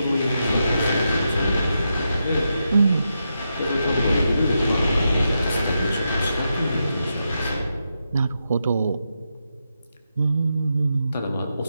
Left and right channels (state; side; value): inverted; both; correlation -0.85